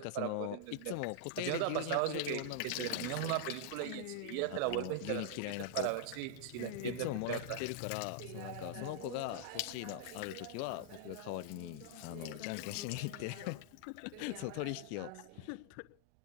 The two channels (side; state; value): both; different; correlation -0.01